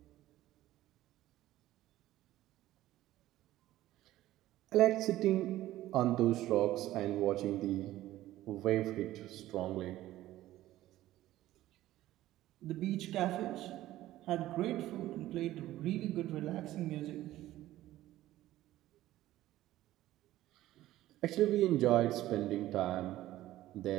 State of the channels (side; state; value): left; quieter; 15.0 dB